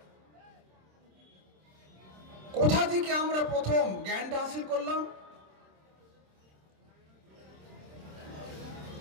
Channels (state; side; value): late; left; 26 ms